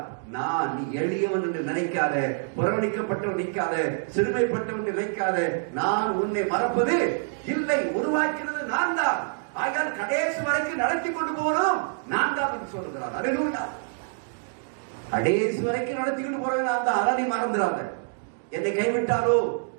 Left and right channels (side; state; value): left; silent; digital silence